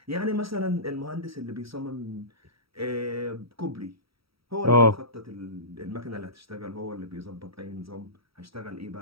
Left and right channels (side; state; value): left; late; 0.75 ms